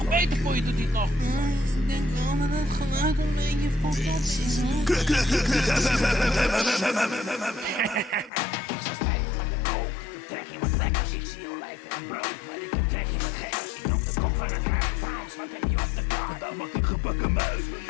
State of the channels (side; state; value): right; drops out; at 8.3 s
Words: Beter voor je doet hij het nog. Ik denk wel dat het geluid een beetje fucked up is, hoor. Ik sta stijf van de kook, ik heb trek in wat lekkers. Ik zie olijven en brood, maar ik heb trek in wat gekkers. Ik roep de kok van het huis. Frans, wat heb je op de kaart? Vandaag maak ik gebakken muis, wil